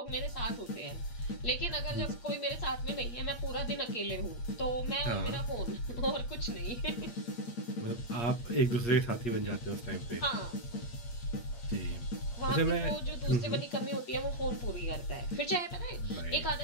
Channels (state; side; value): late; right; 8.5 ms